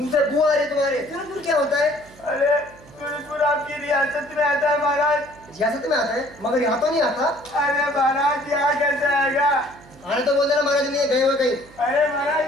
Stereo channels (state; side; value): noise; right; hum, 23 dB below the sound